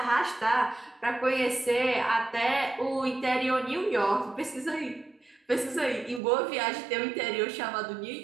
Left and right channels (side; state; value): left; drops out; at 6.2 s